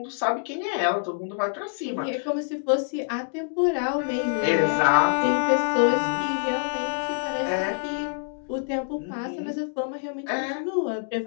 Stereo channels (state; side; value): silent; right; digital silence